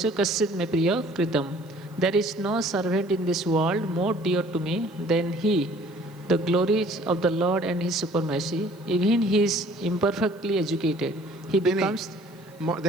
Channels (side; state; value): left; noise; hiss, 28 dB below the sound